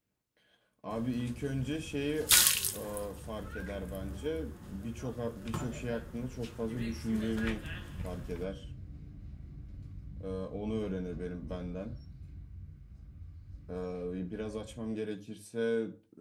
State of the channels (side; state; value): both; identical; correlation 1.00